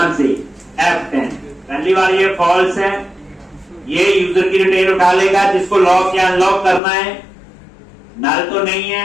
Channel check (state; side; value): drops out; right; at 6.8 s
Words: से F10, पहली बार ये फॉल्स है, ये यूजर की डिटेल उठा लेगा, जिसको लॉक या अनलॉक करना है, नल तो नहीं